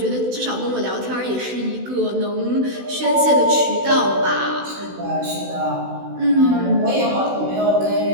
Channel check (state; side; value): late; left; 16 ms